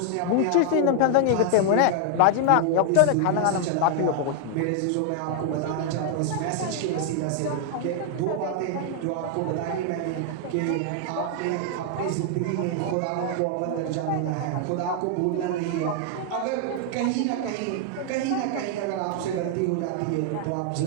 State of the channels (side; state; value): both; different; correlation 0.00